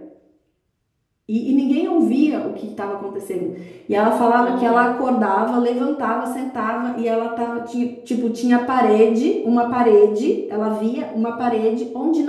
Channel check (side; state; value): both; identical; correlation 1.00